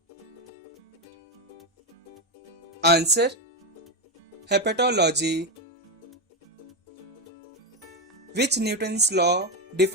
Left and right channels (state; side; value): normal; both; correlation 0.09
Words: Answer. Hepatology. Which Newton's law